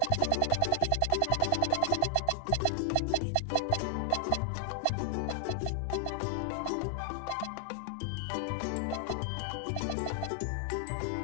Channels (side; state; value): both; different; correlation 0.00